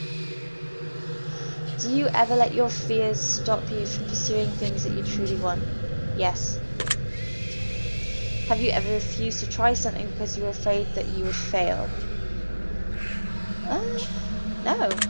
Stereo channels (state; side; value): inverted; both; correlation -1.00